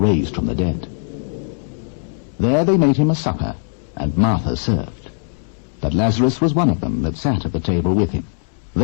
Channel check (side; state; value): right; silent; digital silence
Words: from the dead. There they made him a supper, and Martha served. But Lazarus was one of them that sat at the table with him.